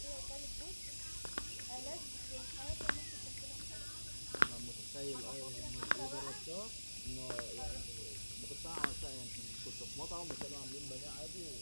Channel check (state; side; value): inverted; both; correlation -1.00